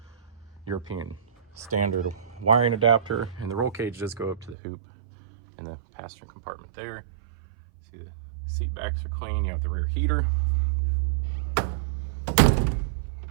European standard wiring adapter, and the roll cage does go up to the hoop in the passenger compartment there. See the seat backs are clean. You have the rear heater.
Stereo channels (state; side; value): drops out; left; at 4.5 s